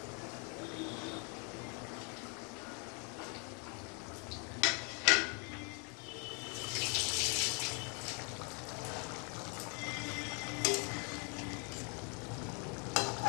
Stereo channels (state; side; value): quieter; right; 35.8 dB